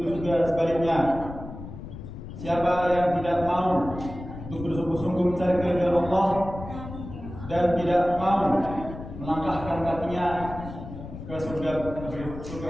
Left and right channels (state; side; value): noise; left; rumble, 11 dB below the sound